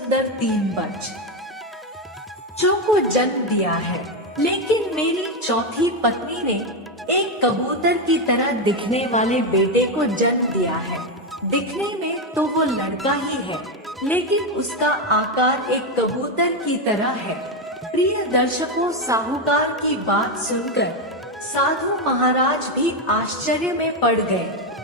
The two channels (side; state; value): both; normal; correlation 0.08